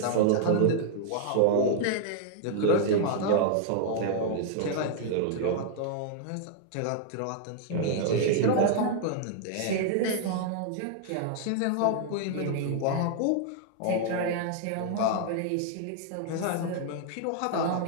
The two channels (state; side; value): different; both; correlation 0.00